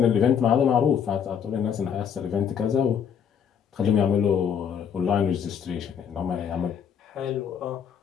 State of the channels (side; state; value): right; quieter; 7.8 dB